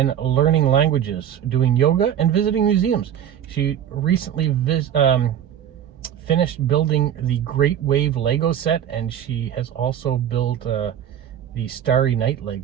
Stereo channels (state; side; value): quieter; left; 9.9 dB